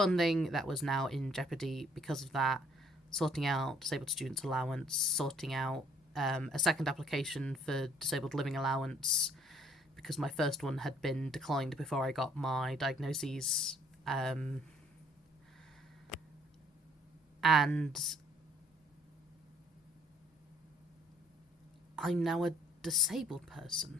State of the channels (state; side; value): normal; both; correlation 0.60